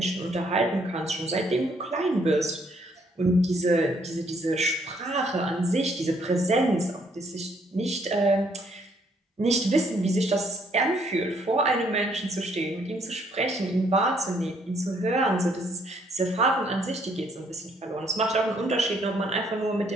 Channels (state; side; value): normal; both; correlation 0.67